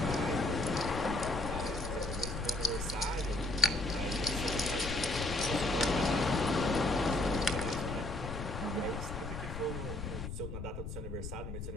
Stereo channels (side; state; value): left; noise; rumble, 6 dB below the sound